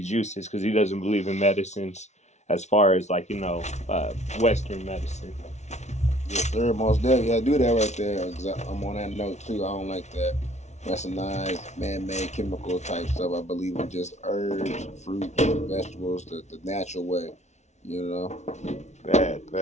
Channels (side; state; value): right; late; 0.32 ms